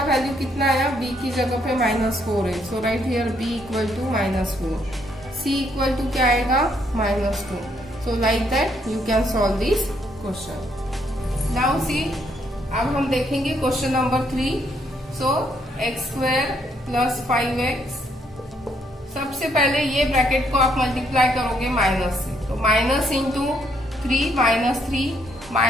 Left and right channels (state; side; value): normal; both; correlation 0.72